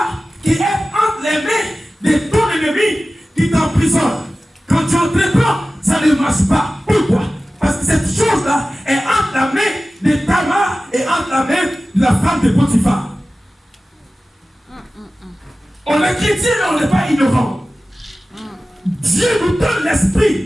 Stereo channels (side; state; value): both; normal; correlation 0.96